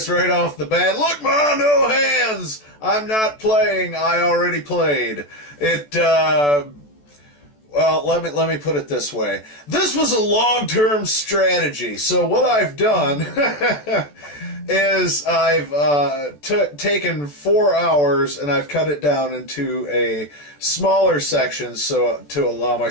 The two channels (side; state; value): right; late; 14 ms